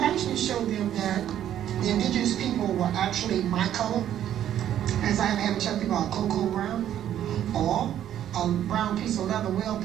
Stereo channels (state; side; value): quieter; left; 10.9 dB